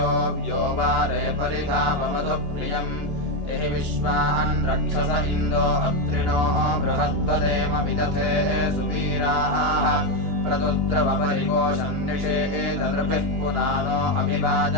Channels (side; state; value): left; late; 2.9 ms